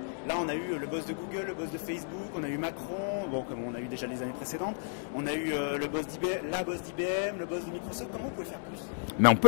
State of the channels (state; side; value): silent; right; digital silence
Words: là on a eu le boss de Google, le boss de Facebook, on a eu Macron, bon comme on a eu déjà les années précédentes, on a eu le boss d'IBM, la boss d'IBM, le boss de Microsoft. Comment vous pouvez faire plus? Mais on